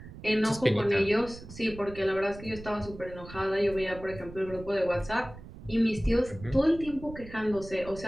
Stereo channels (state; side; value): noise; right; rumble, 15 dB below the sound